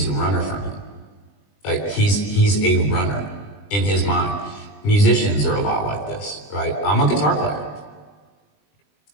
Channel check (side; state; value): right; late; 20 ms